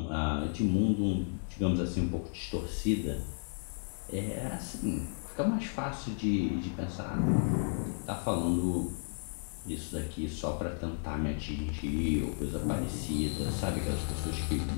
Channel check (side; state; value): right; silent; digital silence